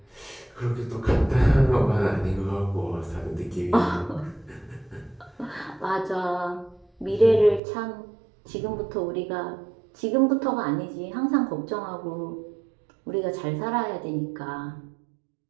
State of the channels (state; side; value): drops out; left; at 7.6 s